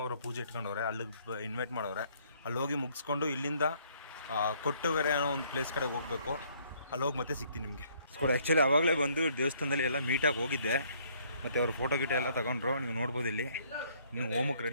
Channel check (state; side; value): inverted; both; correlation -0.64